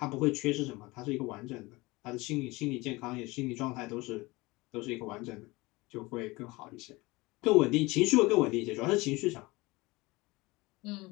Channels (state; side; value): quieter; right; 22.5 dB